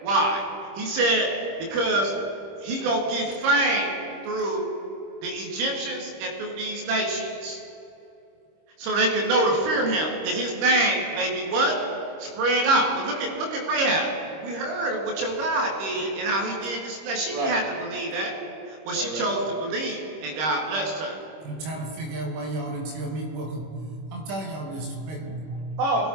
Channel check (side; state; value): left; late; 26 ms